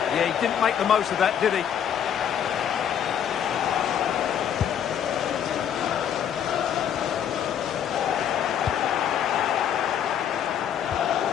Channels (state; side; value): quieter; right; 9.0 dB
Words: Yeah, he didn't make the most of that, did he?